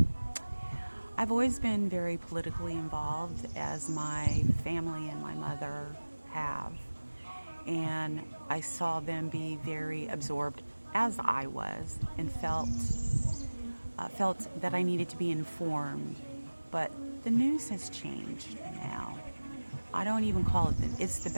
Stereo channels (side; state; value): both; inverted; correlation -1.00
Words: I've always been very politically involved, as my family and my mother have. And I saw them be very absorbed, as I was, and felt that I needed to be informed. But the news has changed now. I don't even call it's the